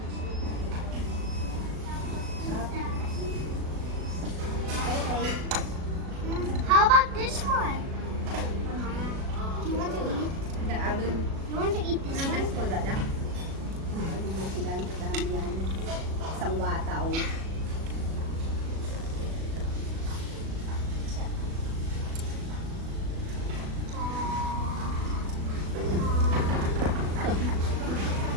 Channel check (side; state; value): left; late; 37 ms